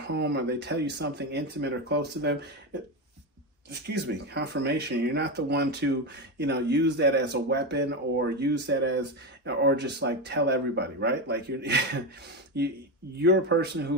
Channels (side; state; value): both; normal; correlation 0.14